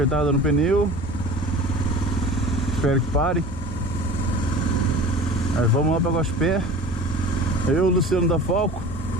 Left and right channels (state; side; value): normal; both; correlation 0.39